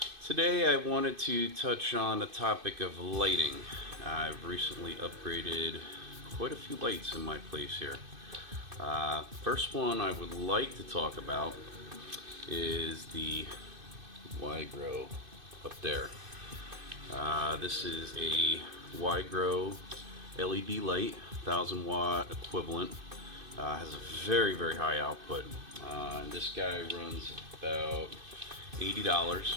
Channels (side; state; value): left; late; 2.5 ms